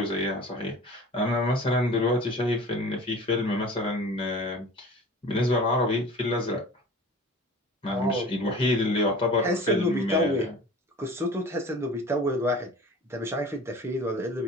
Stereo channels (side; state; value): both; normal; correlation 0.40